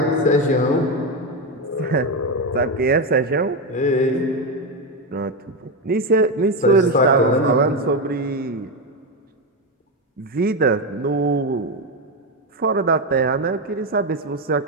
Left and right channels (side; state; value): both; normal; correlation 0.10